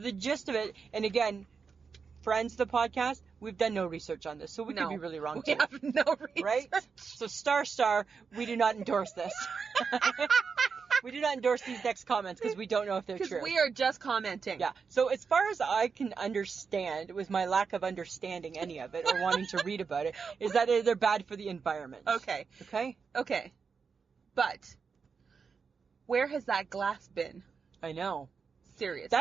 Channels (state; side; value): quieter; left; 5.6 dB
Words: gist of it, and again, friends of the podcast, we've done no research on this, so we could be really wrong too. We have no research. Right? So star, we do not endorse this. We do not endorse these next comments because we don't know if they're true. Because we are just commenting. Yeah. So as far as I can understand, with my lack of understanding any of it or wanting to read about it, is that they're bad for the environment. Okay. Okay? But where has that glass been? I know. Seriously.